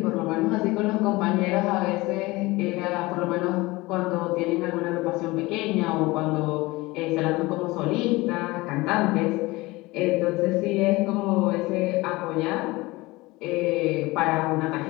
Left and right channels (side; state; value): right; quieter; 21.4 dB